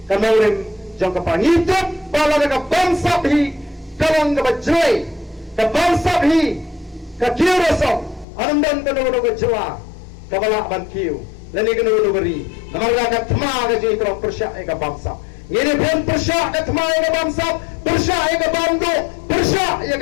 ke nongrem jang ka pangitut pala ka bangsa bhi kalang ka bajoi ka bangsa bhi ka kiroso anandan ka no ka jwa kabala bankiu lani kena nugari namarga ka thma ka ji tro persya eka bangsa ngene pon persya ka thma eka bangsa persya eka bando persya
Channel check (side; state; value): right; drops out; at 8.2 s